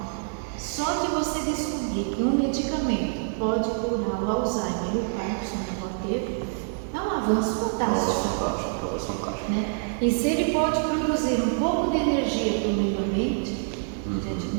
Só de você descobrir que um medicamento pode curar o Alzheimer e o Parkinson na roteiro, é um avanço fantástico. Fantástico. Né? E se ele pode produzir um pouco de energia para o meio ambiente, gente,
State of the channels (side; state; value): left; silent; digital silence